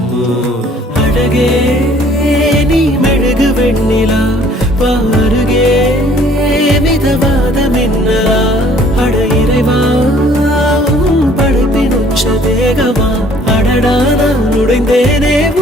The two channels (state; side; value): normal; both; correlation 0.57